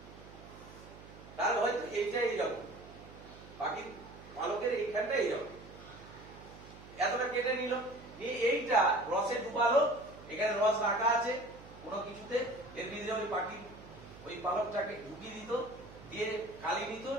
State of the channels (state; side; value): noise; right; hum, 18 dB below the sound